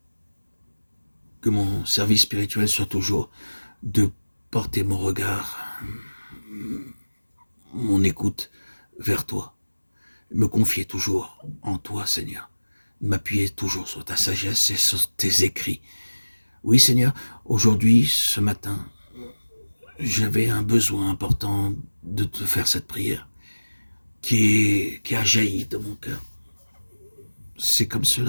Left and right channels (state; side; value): inverted; both; correlation -1.00